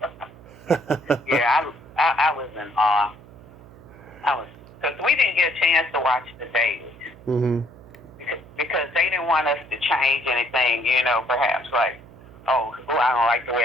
Yeah, I was in awe. Because we didn't get a chance to watch the dailies. Mm-hmm. Because they didn't want us to change anything, you know, perhaps like, oh, I don't like the way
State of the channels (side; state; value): right; noise; hum, 21 dB below the sound